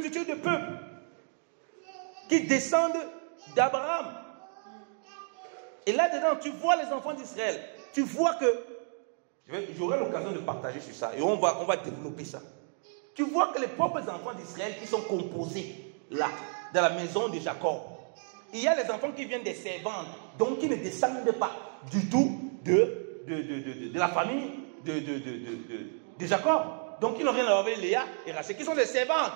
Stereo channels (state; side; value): silent; left; 57 dB below the other